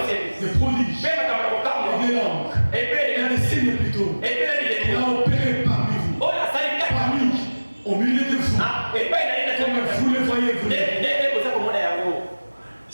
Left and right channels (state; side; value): inverted; both; correlation -1.00